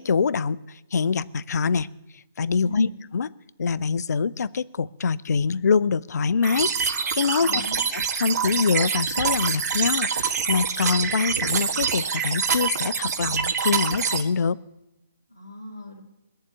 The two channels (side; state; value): both; inverted; correlation -0.59